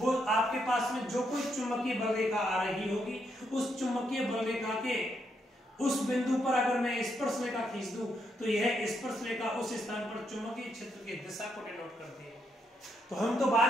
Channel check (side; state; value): both; normal; correlation 0.78